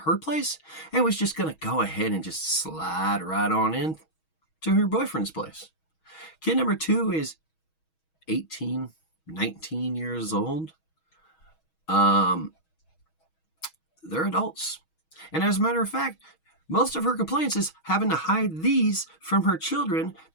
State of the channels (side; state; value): right; late; 6.3 ms